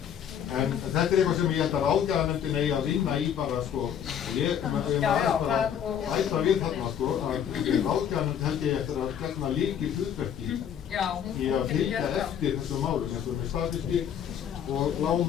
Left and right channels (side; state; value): right; quieter; 8.9 dB